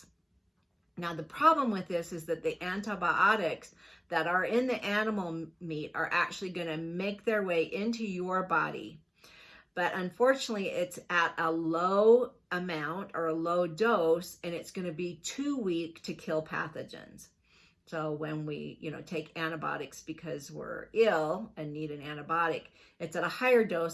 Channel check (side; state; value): both; identical; correlation 1.00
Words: Now, the problem with this is that the antibiotics that are in the animal meat are actually going to make their way into your body. But unfortunately, it's at a low amount or a low dose, and it's going to be too weak to kill pathogens. So when we, take antibiotics because we're ill and need an antibiotic, it's at a higher